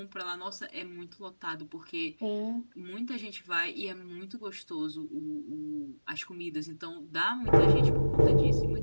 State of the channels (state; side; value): inverted; both; correlation -1.00